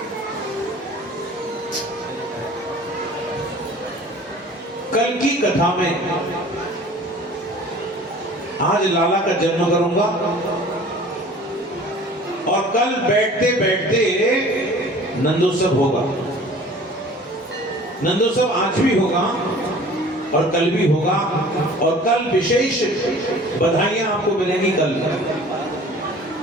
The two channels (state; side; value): normal; both; correlation 0.47